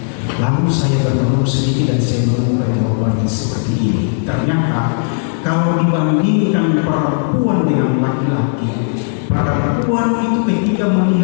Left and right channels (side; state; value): right; silent; digital silence